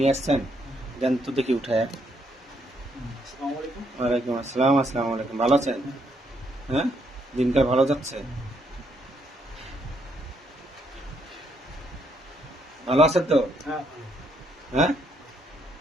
আসছেন, দেন তো দেখি উঠায়। ওয়ালাইকুম আসসালাম। আসসালামু আলাইকুম। ভালো আছেন? হ্যাঁ, দিনকাল ভালো যাচ্ছে? ভালো আছেন তো? হ্যাঁ,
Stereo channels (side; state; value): both; normal; correlation 0.73